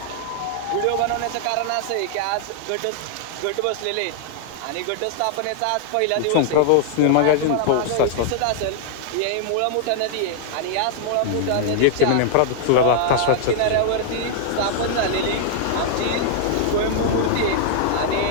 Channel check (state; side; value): different; both; correlation -0.01